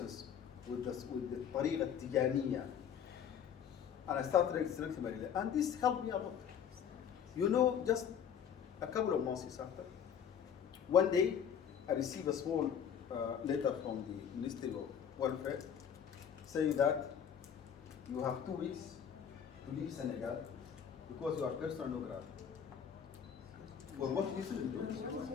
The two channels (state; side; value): quieter; right; 8.2 dB